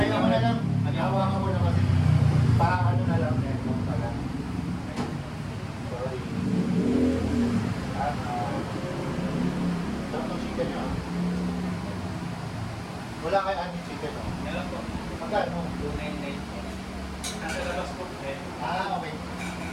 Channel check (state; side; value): identical; both; correlation 1.00